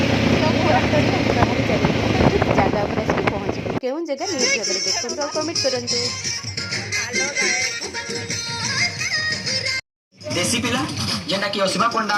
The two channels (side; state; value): both; identical; correlation 1.00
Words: ତ ମୁଁ ରାସ୍ତାରେ ଆମେ ବାହାରି ଚାଲିଲୁ, ତ ଠିକ୍ ଜାଗା ଉପରେ ଆସିକି ପହଞ୍ଚିଲୁ। କେଉଁ ଜାଗା ନିହାତି ଭାବରେ ଦେଖନ୍ତୁ ଆଉ କମେଣ୍ଟ କରନ୍ତୁ। देसी पिला जेना कि असीमा पंडा